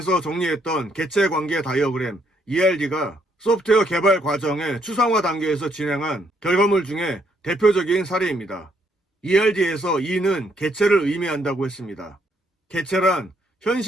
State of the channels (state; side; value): normal; both; correlation 0.71